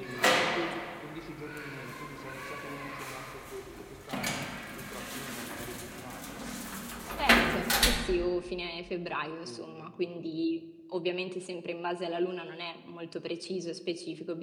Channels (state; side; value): identical; both; correlation 1.00